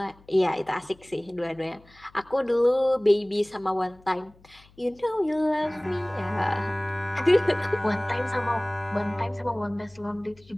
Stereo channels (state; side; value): noise; left; hum, 28 dB below the sound